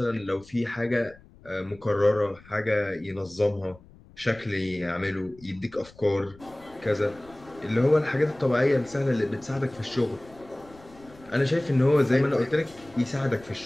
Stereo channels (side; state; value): left; noise; rumble, 24 dB below the sound